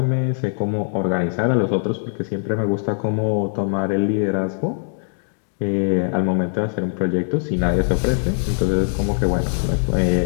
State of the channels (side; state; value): right; silent; digital silence